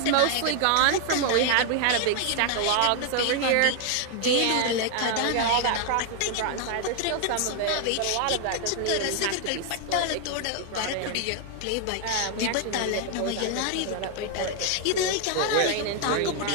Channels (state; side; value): different; both; correlation 0.00